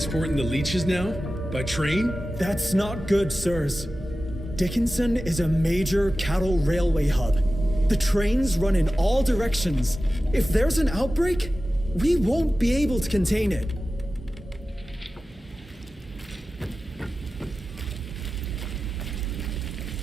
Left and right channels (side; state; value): both; normal; correlation 0.94